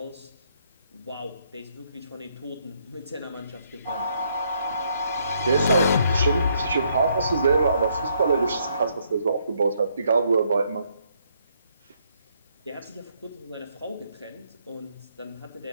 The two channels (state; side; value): inverted; both; correlation -0.72